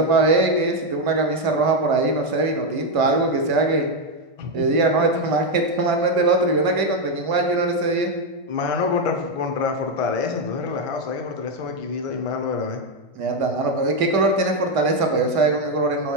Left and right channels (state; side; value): late; left; 2.2 ms